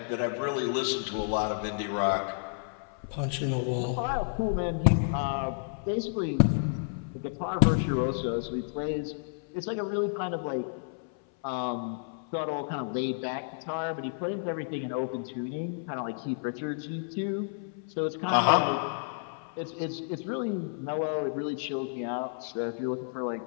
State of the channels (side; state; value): right; silent; 57 dB below the other